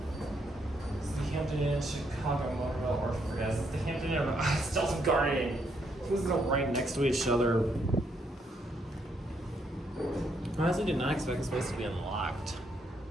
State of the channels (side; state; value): both; normal; correlation 0.74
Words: It's the Hampton Inn Chicago Motorville Orphan guys. It's the Hampton Inn Stilton Garden. These are right next to each other. I honestly did not expect this place to be unlocked.